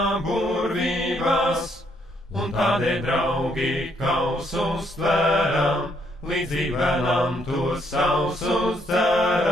burvībās, un tādēļ, draugi, kausus tvēram, līdzīgi bērnam tos sausus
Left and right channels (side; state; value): both; normal; correlation 0.71